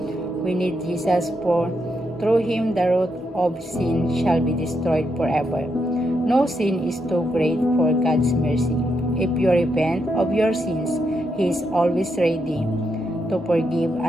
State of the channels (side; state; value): both; normal; correlation 0.81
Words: We need Jesus, for through him the root of sin shall be destroyed forever. No sin is too great for God's mercy. If you repent of your sins, he is always ready to forgive